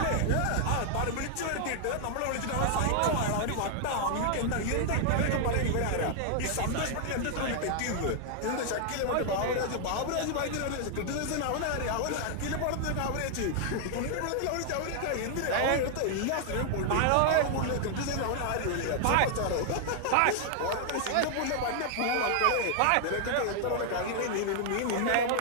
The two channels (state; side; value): different; both; correlation 0.00